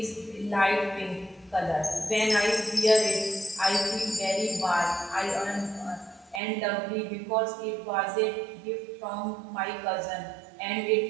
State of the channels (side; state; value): left; drops out; at 6.4 s